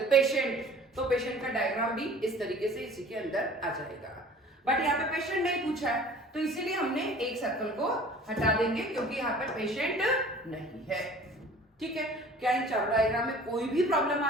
पेशेंट, तो पेशेंट का डायग्राम भी इस तरीके से इसी के अंदर आ जाएगा। बट यहाँ पे पेशेंट नहीं पूछा है तो इसीलिए हमने एक सर्कल को हटा देंगे क्योंकि यहाँ पे पेशेंट नहीं है। ठीक है, क्या इन चार डायग्राम में कोई भी प्रॉब्लम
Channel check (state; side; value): normal; both; correlation 0.47